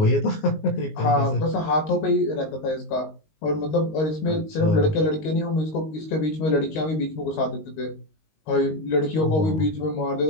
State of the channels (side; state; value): right; late; 19 ms